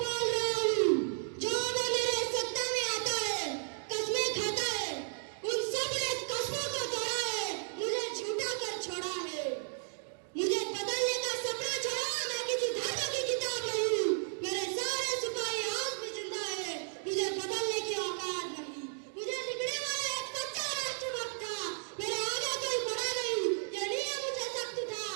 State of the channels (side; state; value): left; silent; 55 dB below the other